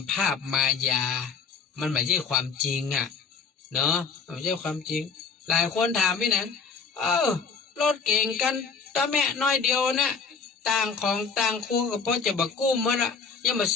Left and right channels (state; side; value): quieter; right; 5.5 dB